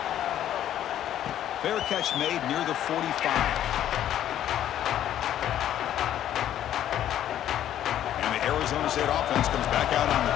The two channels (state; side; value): quieter; right; 11.4 dB